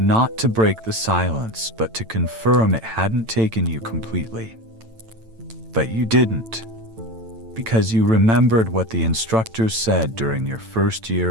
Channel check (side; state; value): left; late; 9.0 ms